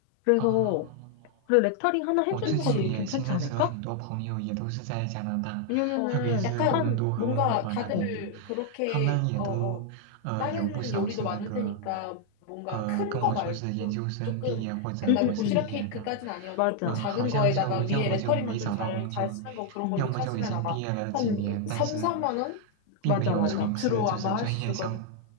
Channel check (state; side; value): different; both; correlation 0.00